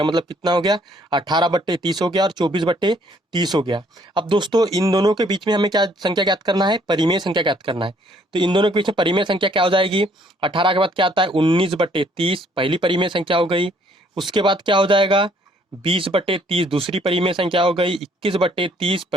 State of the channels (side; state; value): both; normal; correlation 0.64